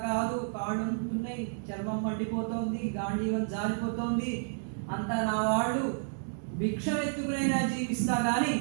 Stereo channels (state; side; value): silent; left; digital silence